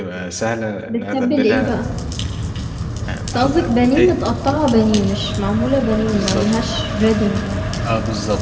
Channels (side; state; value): both; identical; correlation 1.00